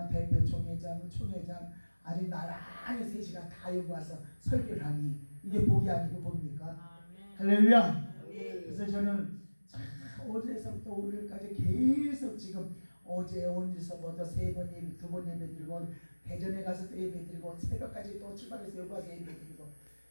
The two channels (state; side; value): inverted; both; correlation -1.00